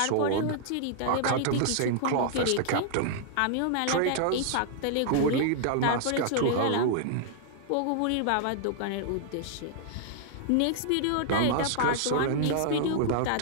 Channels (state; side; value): different; both; correlation -0.01